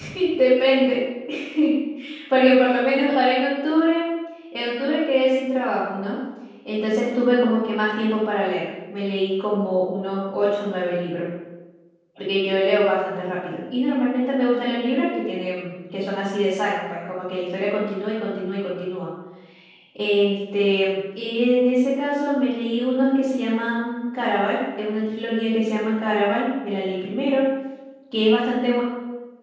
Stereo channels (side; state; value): both; identical; correlation 1.00